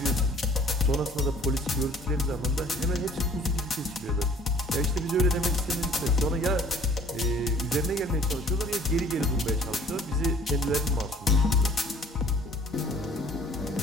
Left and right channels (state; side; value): normal; both; correlation 0.53